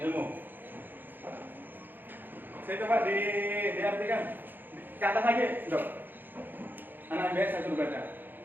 ilmu. Saya coba diartikan. Ke atas lagi, Dok. Anak biasa saya suruh baca.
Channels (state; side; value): late; left; 0.091 ms